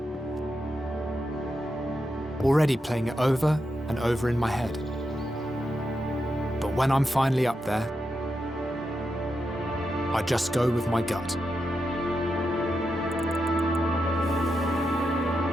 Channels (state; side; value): normal; both; correlation 0.86